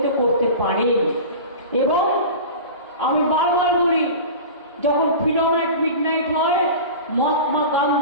করতে পারেন। এবং আমি বারবার বলি, যখন ফ্রিডম অ্যাট মিডনাইট হয়, মহাত্মা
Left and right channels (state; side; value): inverted; both; correlation -0.33